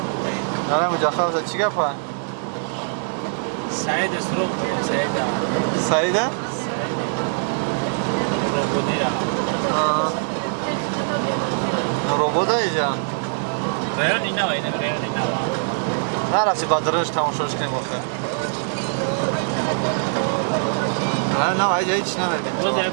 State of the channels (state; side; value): silent; left; digital silence